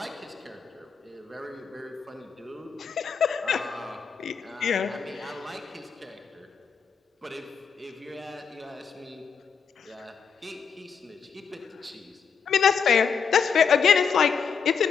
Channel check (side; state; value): right; quieter; 6.3 dB